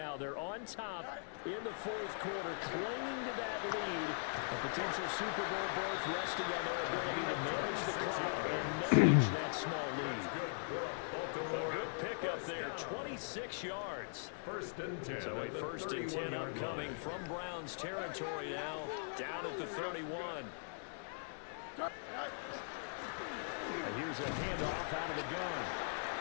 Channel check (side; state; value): right; silent; 51 dB below the other